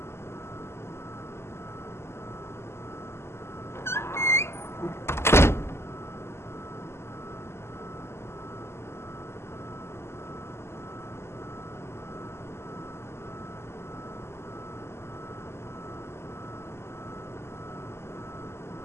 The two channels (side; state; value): right; late; 0.12 ms